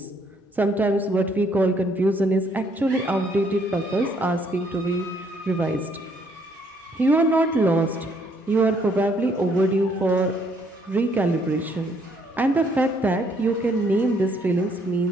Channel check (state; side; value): normal; both; correlation 0.67